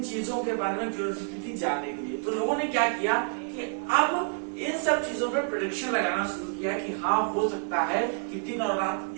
चीजों के बारे में क्यूरियोसिटी थी जानने के लिए। तो लोगों ने क्या किया कि अब इन सब चीजों पे प्रेडिक्शन लगाना शुरू किया कि हाँ हो सकता है कि दिन और रात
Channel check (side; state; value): left; silent; 59 dB below the other